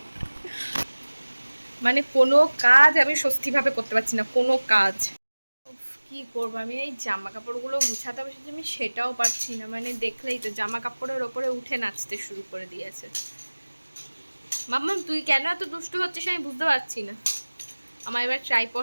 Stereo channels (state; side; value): inverted; both; correlation -1.00